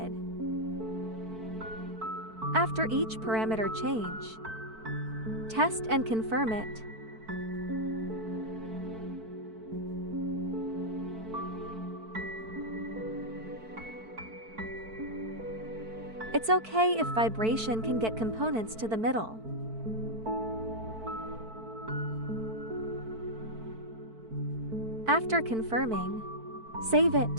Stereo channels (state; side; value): late; left; 4.5 ms